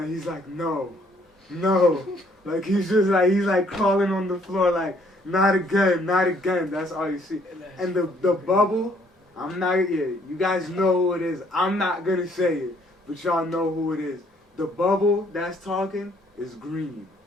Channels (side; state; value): both; normal; correlation 0.65